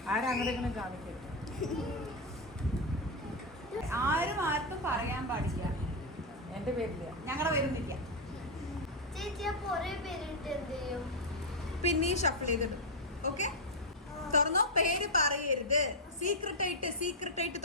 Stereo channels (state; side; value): normal; both; correlation 0.01